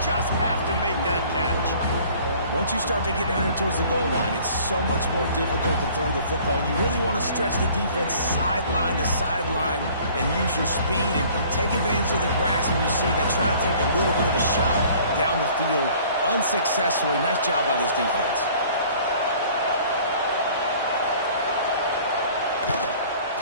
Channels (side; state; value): both; inverted; correlation -0.52